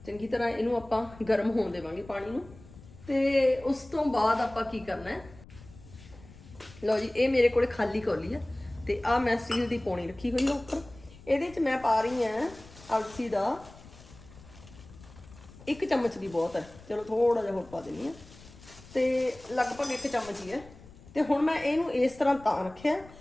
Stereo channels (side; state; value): left; noise; rumble, 20 dB below the sound